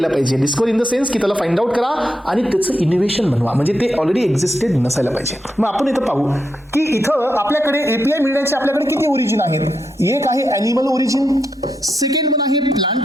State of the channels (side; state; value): both; normal; correlation 0.84